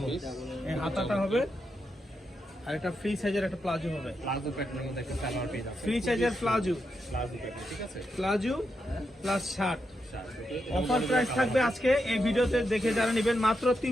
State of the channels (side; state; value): both; normal; correlation 0.84